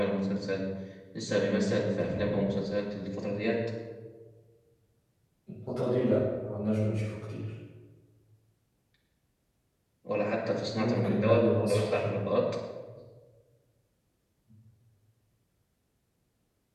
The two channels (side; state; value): both; identical; correlation 1.00